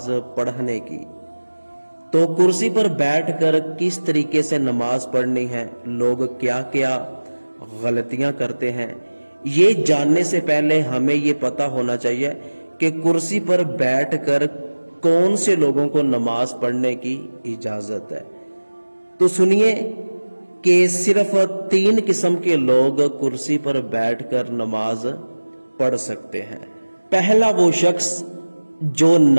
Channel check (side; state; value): both; inverted; correlation -1.00